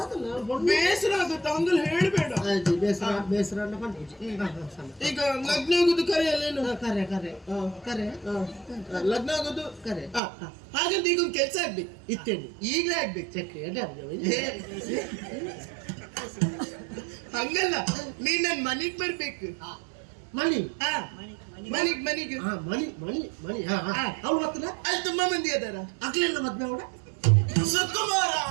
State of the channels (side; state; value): left; drops out; at 10.2 s